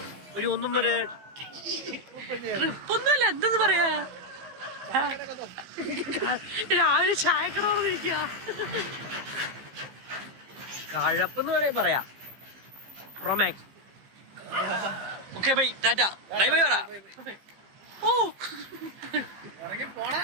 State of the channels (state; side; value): late; left; 15 ms